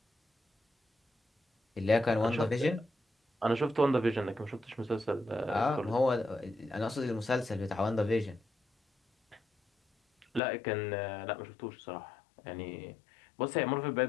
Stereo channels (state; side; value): drops out; right; at 10.4 s